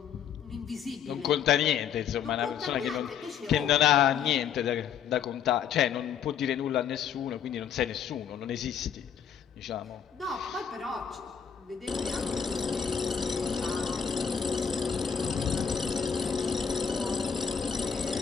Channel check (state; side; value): quieter; right; 7.7 dB